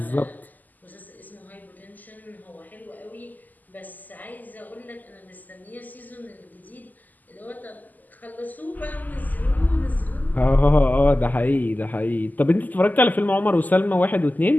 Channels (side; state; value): right; late; 0.083 ms